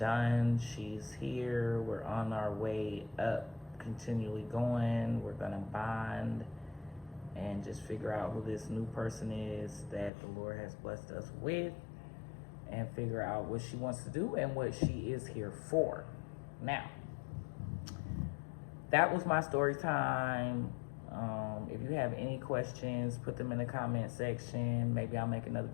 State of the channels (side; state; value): right; drops out; at 10.1 s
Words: She's here. We're on our way up, continually going. We're gonna bond and just figure out who this new person is that the Lord has blessed us with, and figure out what she wants to do and what she is here for. Now, that was my story time. If you have any questions, put them in the comment section. Maybe I'll make another